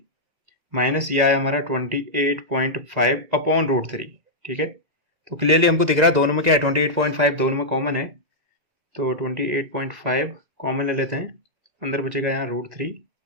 माइनस ये आया हमारा 28.5 अपॉन √3, ठीक है। तो क्लियरली हमको दिख रहा है दोनों में क्या है, 28.5 दोनों में कॉमन है, तो 28.5 कॉमन ले लेते हैं, अंदर बचेगा यहाँ √3,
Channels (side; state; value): left; late; 1.9 ms